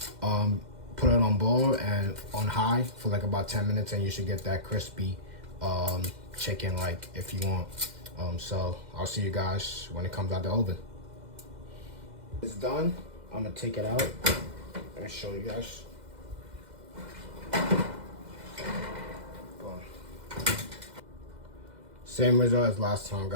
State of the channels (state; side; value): late; left; 2.0 ms